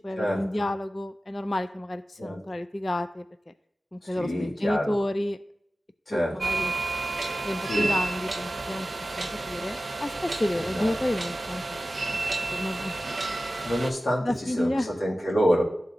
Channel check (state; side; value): normal; both; correlation 0.95